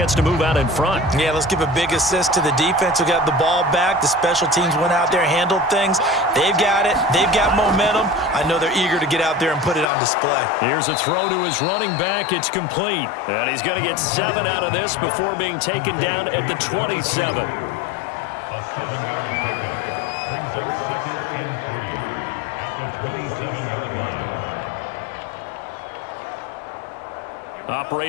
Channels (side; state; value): right; drops out; at 9.9 s